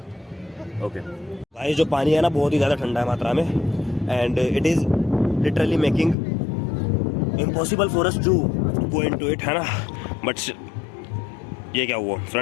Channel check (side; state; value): right; drops out; at 6.2 s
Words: ओके भाई, जो पानी है ना बहुत ही ज़्यादा ठंडा है मात्रा में and it is literally making impossible for us to go into it, है ना. बट ये क्या हुआ